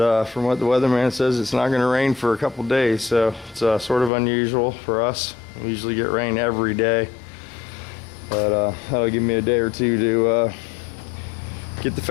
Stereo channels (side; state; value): right; drops out; at 4.1 s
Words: from what the weatherman says, it's not going to rain for a couple days, so it's sort of unusual for us. We usually get rain every day, but that'll give me a day or two to get the